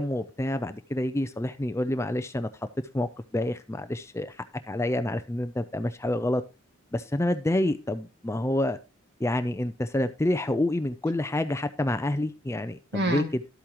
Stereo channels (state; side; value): normal; both; correlation 0.83